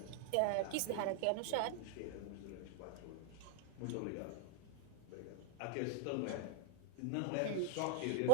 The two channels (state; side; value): different; both; correlation 0.00